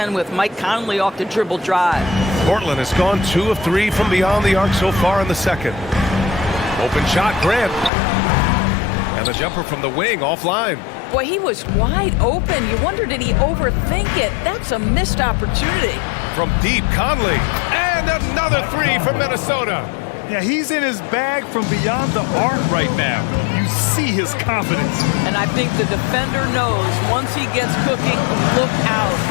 with. Mike Conley off the dribble drive. Portland has gone 2 of 3 from beyond the arc so far in the second. Open shot, Grant. And the jumper from the wing offline. Boy, he was wide open. You wonder, did he overthink it? That's a missed opportunity. From deep, Conley. And another 3 from Minnesota. Yeah, he's in his bag from beyond the arc right now. You see his confidence. And I think the defender knows once he gets cooking, look out.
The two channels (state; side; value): drops out; right; at 7.9 s